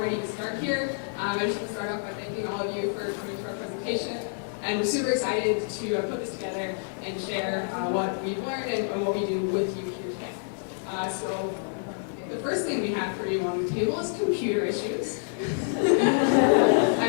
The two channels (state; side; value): silent; right; 60 dB below the other